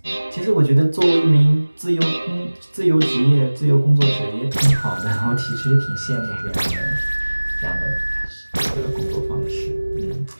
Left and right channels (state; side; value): inverted; both; correlation -1.00